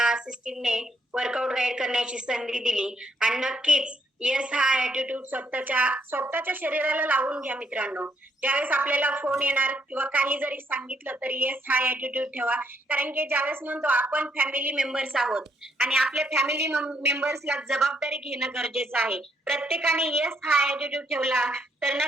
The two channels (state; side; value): normal; both; correlation 0.72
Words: सिस्टीमने वर्कआउट गाईड करण्याची संधी दिली आणि नक्कीच येस हा ऍटिट्यूड स्वतःच्या शरीराला लावून घ्या मित्रांनो. ज्यावेळेस आपल्याला फोन येणार किंवा काही जरी सांगितलं तर येस हा ऍटिट्यूड ठेवा. कारण की ज्यावेळेस म्हणतो आपण फॅमिली मेंबर्स आहोत आणि आपल्या फॅमिली मेंबर्सला जबाबदारी घेणं गरजेचं आहे. प्रत्येकाने येस हा ऍटिट्यूड ठेवला तर